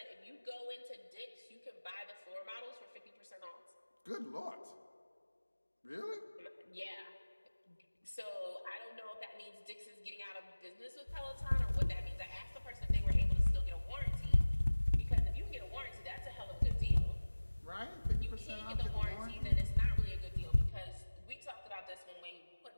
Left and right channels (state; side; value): inverted; both; correlation -1.00